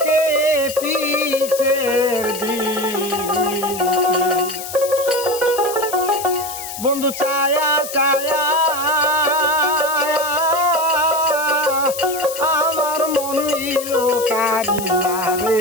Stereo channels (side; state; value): left; noise; hiss, 9 dB below the sound